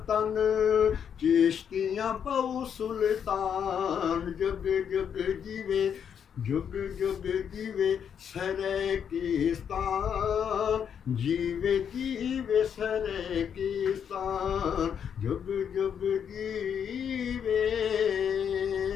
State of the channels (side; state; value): right; quieter; 8.0 dB